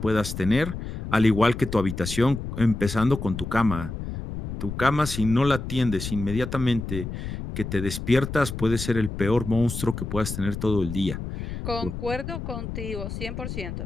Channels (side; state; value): left; noise; rumble, 7 dB below the sound